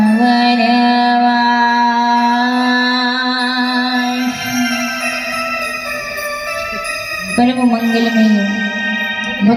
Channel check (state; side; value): identical; both; correlation 1.00